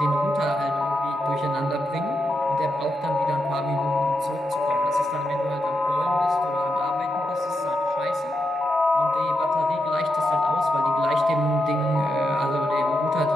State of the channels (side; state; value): both; normal; correlation 0.85